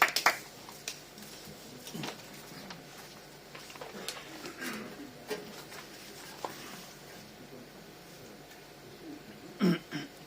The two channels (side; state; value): both; identical; correlation 1.00